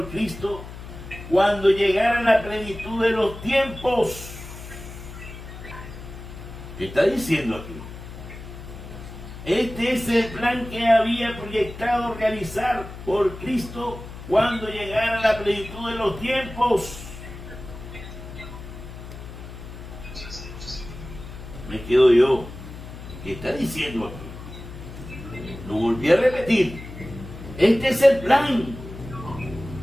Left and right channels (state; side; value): noise; left; hum, 13 dB below the sound